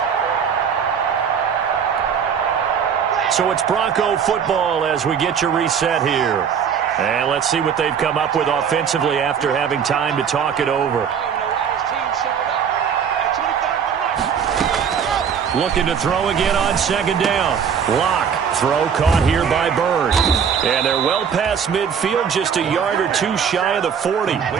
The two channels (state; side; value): quieter; left; 7.3 dB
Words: So it's Bronco football as we get you reset here. And let's see what they've come up with offensively after having time to talk it over. Looking to throw again on 2nd down. Lock. Throw caught here by Bird. And they're well past midfield, just a yard or two shy of the 40.